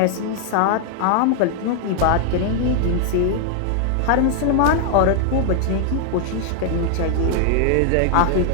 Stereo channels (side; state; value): both; different; correlation 0.00